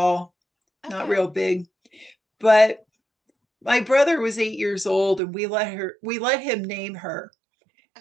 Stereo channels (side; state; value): left; drops out; at 5.2 s